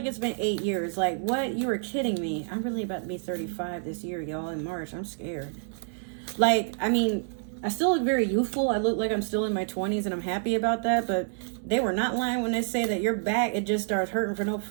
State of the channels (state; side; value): silent; left; digital silence